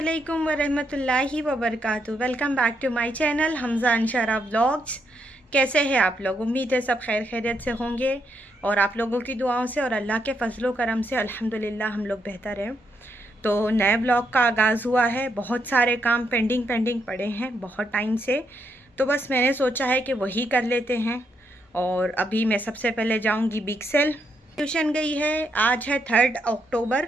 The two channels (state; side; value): normal; both; correlation 0.78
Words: वरहमतुल्लाहि वबरकातुहू। Welcome back to my channel Hamza Anshara vlogs. कैसे हैं आप लोग? उम्मीद है सब खैर खैरियत से होंगे और आप लोगों की दुआओं से और अल्लाह के फजलो करम से अल्हम्दुलिल्लाह हम लोग बेहतर हैं। तो नए ब्लॉग का आगाज़ हुआ है। बहुत सारे काम पेंडिंग पड़े हैं बहुत टाइम से, तो बस मैंने सोचा है कि वही कर लेते हैं। और अभी मैं सबसे पहले जाऊँगी बिग सेल। ट्यूशन गई है। आज है 3